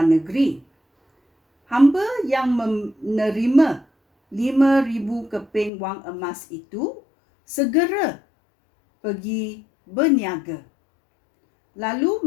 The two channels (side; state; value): right; drops out; at 5.7 s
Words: negeri. Hamba yang menerima 5,000 keping wang emas itu segera pergi berniaga, lalu